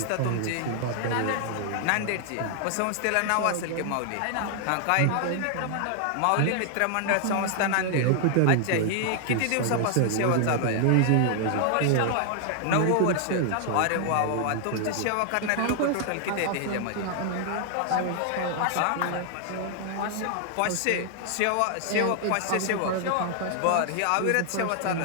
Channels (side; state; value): both; different; correlation 0.00